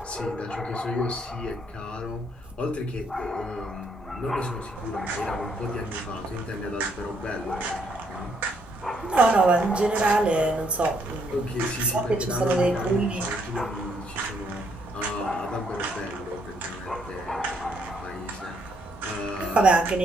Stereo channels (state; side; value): normal; both; correlation 0.71